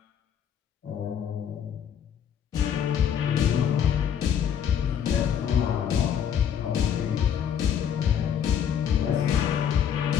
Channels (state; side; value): quieter; right; 8.5 dB